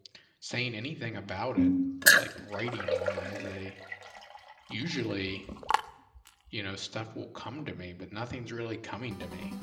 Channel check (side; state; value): both; identical; correlation 1.00